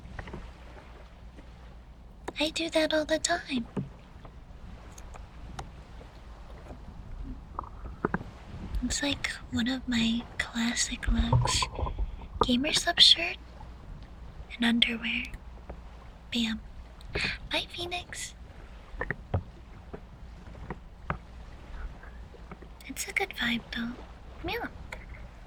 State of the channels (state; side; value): identical; both; correlation 1.00